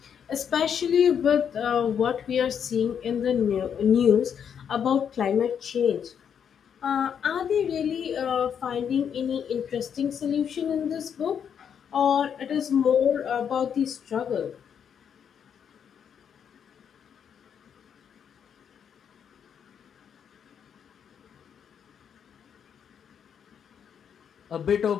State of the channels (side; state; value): right; quieter; 7.9 dB